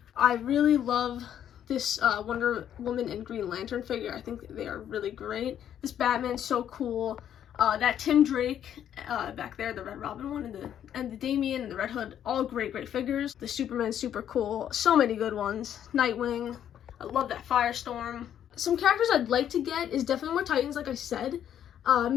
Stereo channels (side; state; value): right; quieter; 10.0 dB